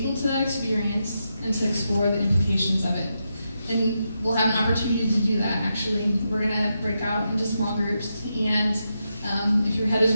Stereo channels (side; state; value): both; inverted; correlation -0.85